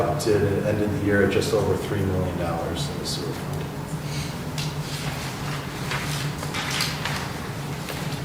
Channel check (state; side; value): identical; both; correlation 1.00